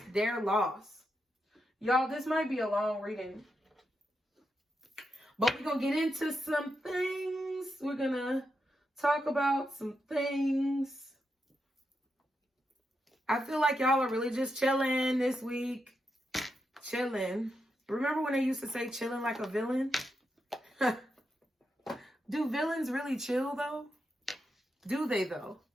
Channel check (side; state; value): both; normal; correlation 0.85